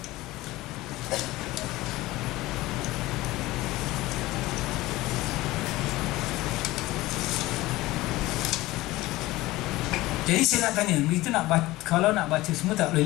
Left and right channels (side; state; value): right; quieter; 18.6 dB